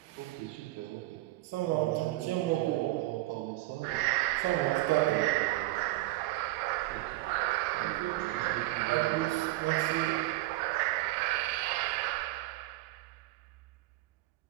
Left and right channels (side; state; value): left; quieter; 17.8 dB